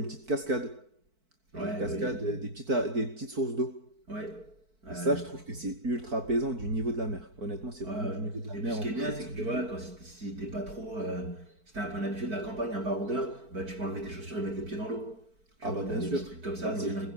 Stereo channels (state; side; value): late; left; 4.5 ms